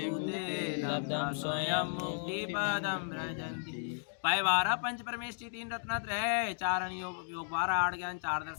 भूते लब्धम स्वयं मुक्ति पदम व्रजन्ति। पैवारा पंच परमेष्टि 3 रत्नत्रय 4 योग 12 8 ज्ञान 4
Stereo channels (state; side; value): silent; right; digital silence